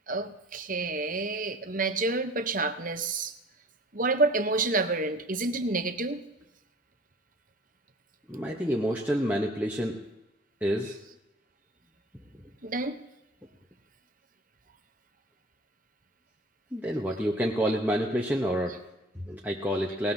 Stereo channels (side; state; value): both; normal; correlation 0.46